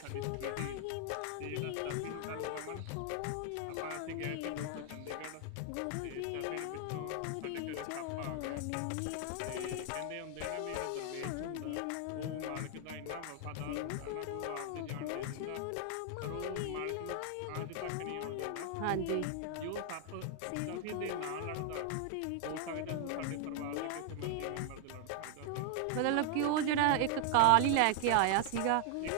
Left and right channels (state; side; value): different; both; correlation 0.00